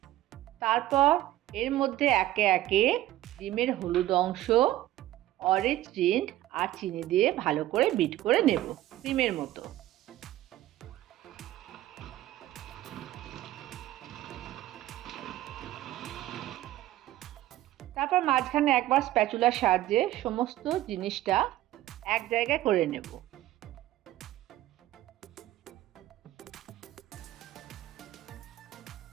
তারপর এর মধ্যে একে একে ডিমের হলুদ অংশ, অরেঞ্জ রিন্ড আর চিনি দিয়ে ভালো করে বিট করে নেব ক্রিমের মতো। তারপর মাঝখানে একবার স্প্যাচুলার সাহায্যে সমস্ত জিনিসটা এক জায়গায় করে নেব।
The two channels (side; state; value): left; quieter; 15.0 dB